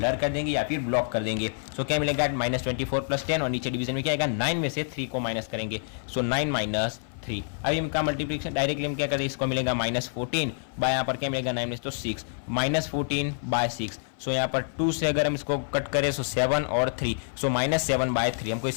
कर देंगे या फिर ब्लॉक कर देंगे। सो क्या मिलेगा, -24 + 10 और नीचे डिवीजन में क्या आएगा, 9 में से 3 को माइनस करेंगे, सो 9 - 3। अभी इनका मल्टीप्लिकेशन डायरेक्टली हम क्या करें, इसको मिलेगा -14 बाय यहाँ पर क्या मिलेगा 9 में से तो 6, -14/6। सो यहाँ पर 2 से अगर हम इसको कट करें सो 7 और 3, सो -7/3 हमको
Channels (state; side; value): silent; right; 56 dB below the other